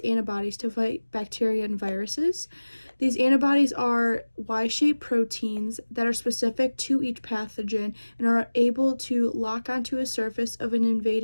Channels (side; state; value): both; inverted; correlation -1.00